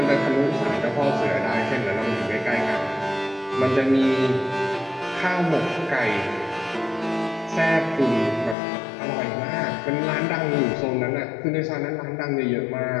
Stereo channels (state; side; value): drops out; right; at 8.6 s